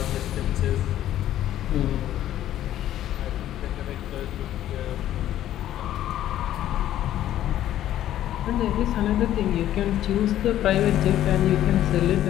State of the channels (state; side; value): quieter; right; 12.4 dB